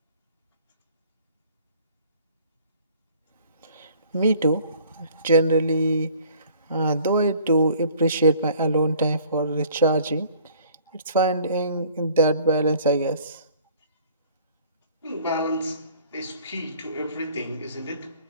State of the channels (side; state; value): both; inverted; correlation -0.54